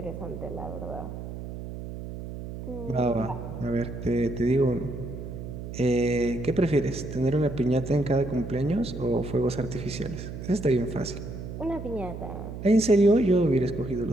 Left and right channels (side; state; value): right; noise; hum, 9 dB below the sound